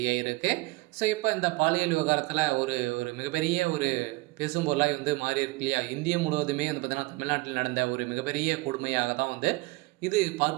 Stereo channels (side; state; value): left; quieter; 22.8 dB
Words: இப்போ இந்த பாலியல் விவகாரத்தில் ஒரு ஒரு மிகப்பெரிய ஒரு பேசும் பொருளாக வந்து மாறி இருக்கு இல்லையா? இந்தியா முழுவதுமே வந்து பார்த்தீங்கன்னா தமிழ்நாட்டில் நடந்த ஒரு மிகப்பெரிய கொடுமையாக தான் வந்து இது